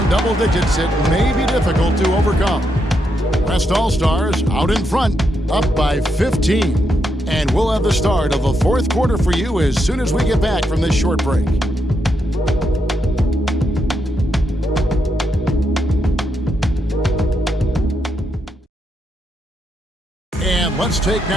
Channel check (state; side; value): normal; both; correlation 0.81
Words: double digits, it may be difficult to overcome. West All-Stars out in front, up by 15. And we'll have the start of the 4th quarter for you as soon as we get back from this short break. And let's take